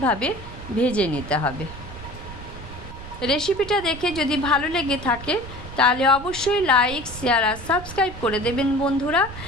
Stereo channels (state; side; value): noise; right; rumble, 14 dB below the sound